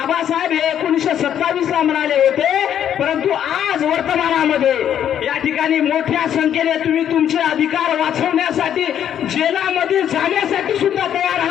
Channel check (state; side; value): quieter; right; 9.8 dB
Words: हे 1927 ला म्हणाले होते, परंतु आज वर्तमानामध्ये या ठिकाणी मोठ्या संख्येने तुम्ही तुमचे अधिकार वाचवण्यासाठी जेलामध्ये जाण्यासाठी सुद्धा तयार